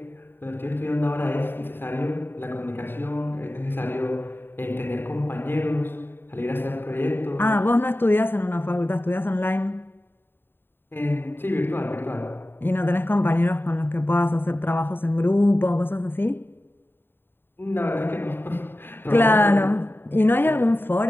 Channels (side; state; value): right; late; 0.10 ms